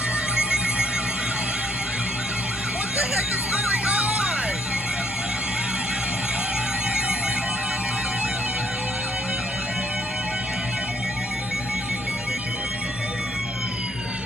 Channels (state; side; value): normal; both; correlation 0.66